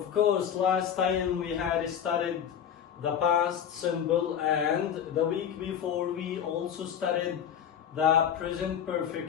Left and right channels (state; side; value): quieter; right; 8.7 dB